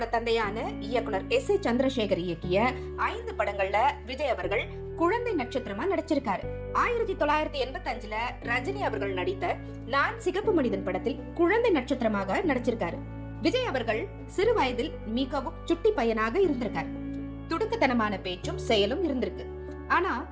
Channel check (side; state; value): both; identical; correlation 1.00